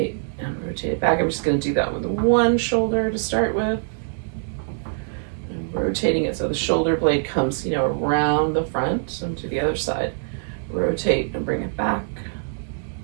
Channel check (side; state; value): left; silent; digital silence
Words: and rotate it back. I'm just going to do that with one shoulder to start with. I'm rotating it so the shoulder blade comes, you know, around the front and to the other side. Rotate and bring it back.